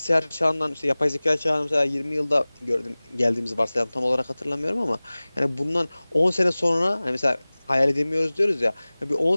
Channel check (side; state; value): both; inverted; correlation -0.99